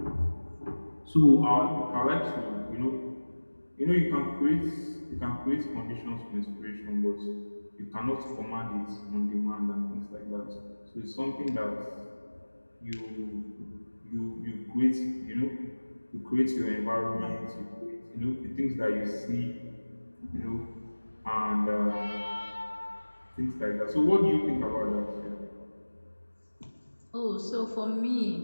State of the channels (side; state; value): both; inverted; correlation -1.00